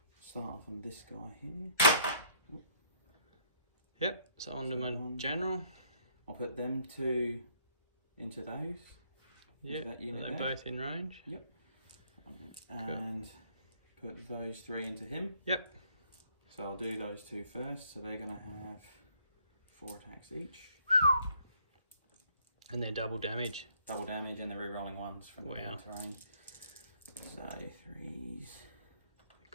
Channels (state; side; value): inverted; both; correlation -0.65